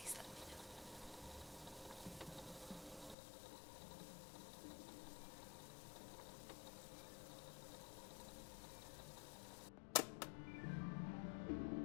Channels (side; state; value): right; drops out; at 3.2 s